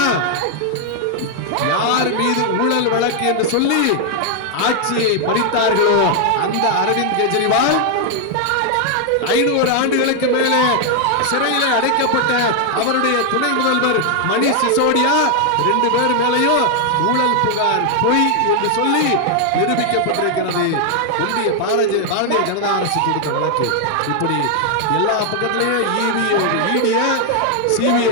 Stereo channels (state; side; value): different; both; correlation 0.00